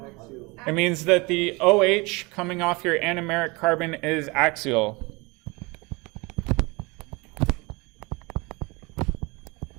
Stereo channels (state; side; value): quieter; left; 25.9 dB